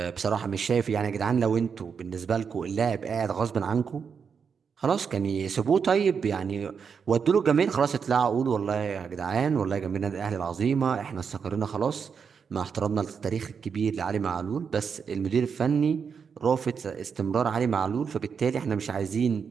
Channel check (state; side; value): quieter; left; 6.3 dB